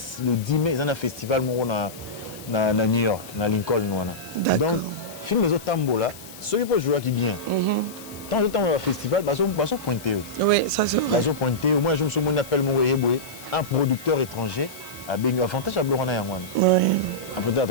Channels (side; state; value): left; noise; hiss, 17 dB below the sound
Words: mai, ils ont un festival à New York, à Lincoln. Donc, film les autres tambos là, ceux qui peuvent jouer qui bien. Tant de temps au festival, ils sont pointés. Oui, ça c'est vrai. Ils sont pointés. Moi, je me souviens, on appelle un producteur étranger à Bengu. Avantage à Blorana Yangwana. Oui. Un producteur